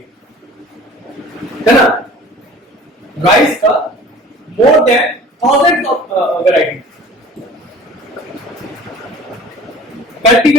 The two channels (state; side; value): normal; both; correlation 0.45